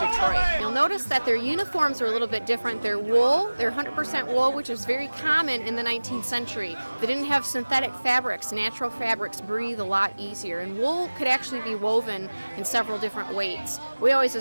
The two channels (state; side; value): inverted; both; correlation -1.00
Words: You'll notice that their uniforms are a little bit different. They're wool, they're 100% wool, which is very common in the 19th century. They didn't have synthetic fabrics. Natural fabrics breathe a lot easier, and wool could actually be woven in several different weights. We always